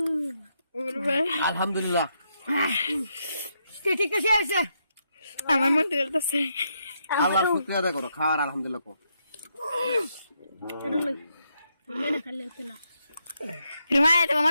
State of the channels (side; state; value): both; inverted; correlation -0.79